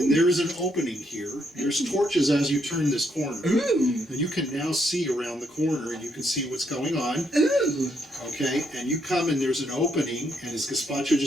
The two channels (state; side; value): normal; both; correlation 0.75